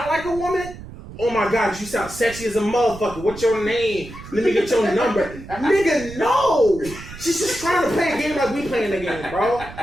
like a woman? Oh my god, you sound sexy as a motherfucker. What's your name? Let me get your number. Nigga, no! She's just trying to play a game like we playing the game, bro.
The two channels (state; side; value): noise; right; rumble, 14 dB below the sound